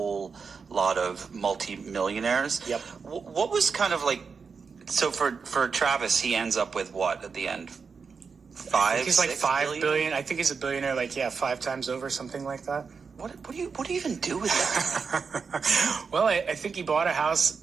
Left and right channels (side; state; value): left; quieter; 5.4 dB